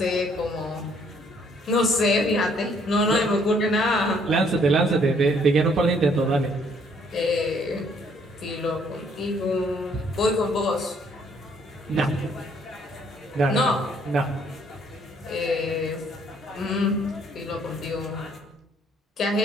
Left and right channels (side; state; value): both; normal; correlation 0.65